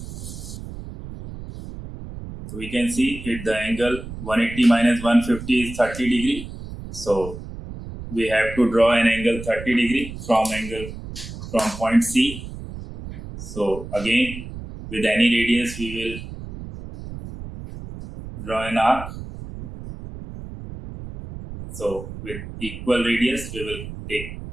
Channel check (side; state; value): right; noise; rumble, 11 dB below the sound